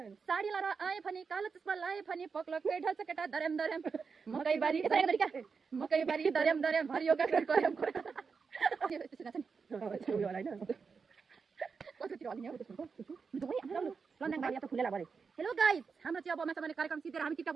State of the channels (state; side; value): quieter; left; 5.3 dB